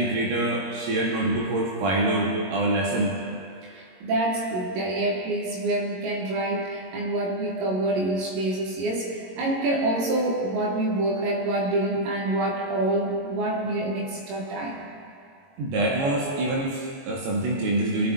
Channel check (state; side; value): late; left; 22 ms